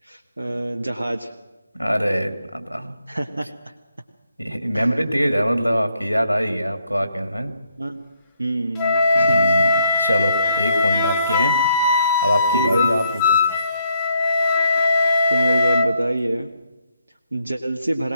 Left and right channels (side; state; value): both; inverted; correlation -0.75